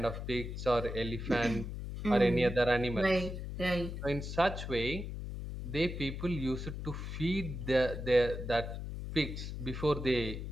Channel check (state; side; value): noise; left; hum, 6 dB below the sound